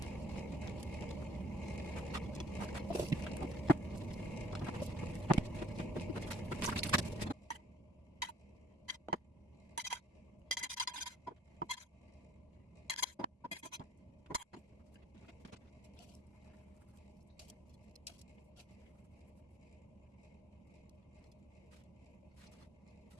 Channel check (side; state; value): both; normal; correlation 0.60